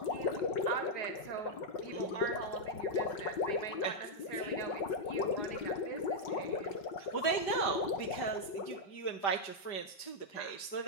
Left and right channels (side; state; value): right; late; 5.0 ms